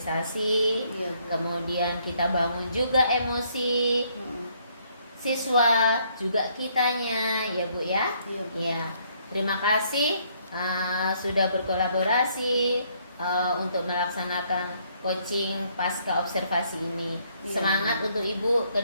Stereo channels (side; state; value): both; inverted; correlation -0.68